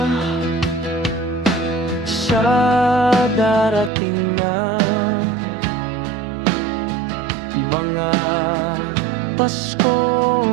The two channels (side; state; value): left; drops out; at 3.9 s